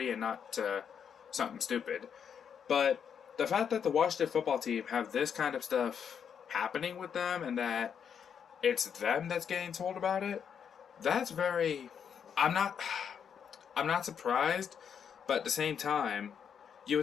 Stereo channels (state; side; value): quieter; right; 7.6 dB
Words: and not to something stupid. But the fact that the Washington football team have this kind of stuff happening with them, and that it's them that's getting told about it, that's very... I'm not surprised, but at the same time, you